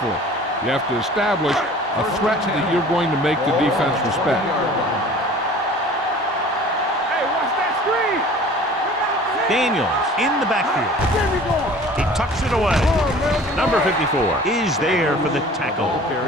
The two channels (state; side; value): normal; both; correlation 0.46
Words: You have to establish a threat that you're going to make the defense respect. Hey, watch that screen. Daniels in the backfield. There we go. He tucks it away. Number 54 is there for the tackle